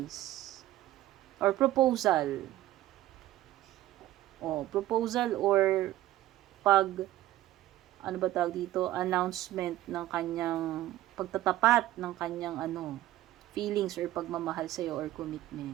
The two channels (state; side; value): quieter; left; 14.8 dB